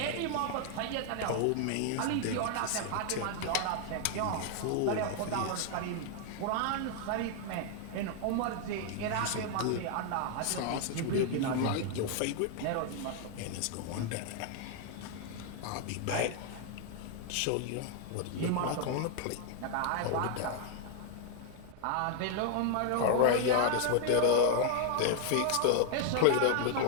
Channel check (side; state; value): both; different; correlation 0.00